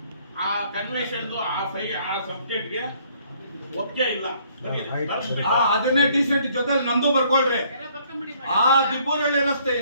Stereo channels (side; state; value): both; inverted; correlation -0.63